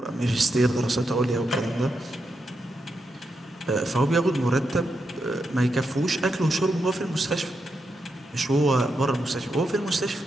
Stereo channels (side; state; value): both; normal; correlation 0.84